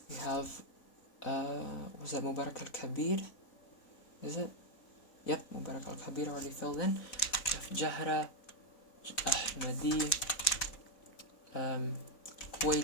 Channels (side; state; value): right; late; 4.0 ms